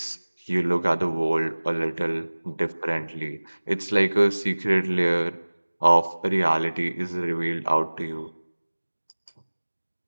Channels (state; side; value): inverted; both; correlation -1.00